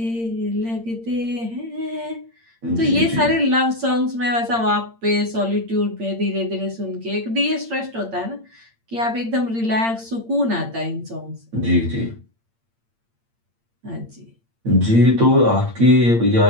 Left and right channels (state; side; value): late; left; 8.7 ms